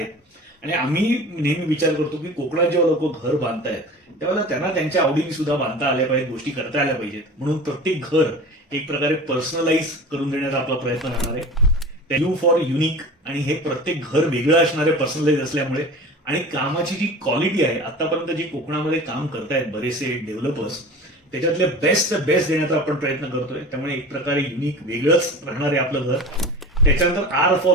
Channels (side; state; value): both; normal; correlation 0.36